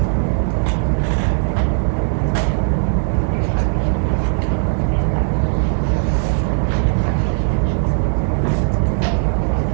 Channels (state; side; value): silent; left; digital silence